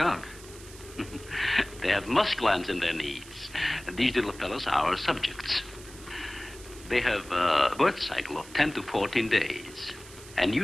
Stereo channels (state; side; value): noise; right; hiss, 18 dB below the sound